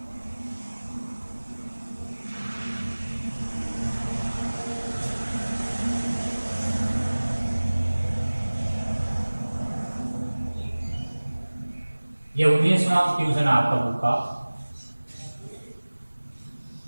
ये 19वां क्वेश्चन आपका बुक का।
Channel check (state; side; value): inverted; both; correlation -1.00